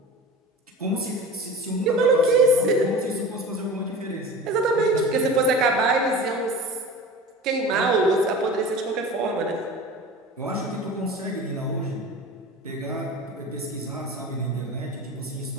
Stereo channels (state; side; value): normal; both; correlation 0.35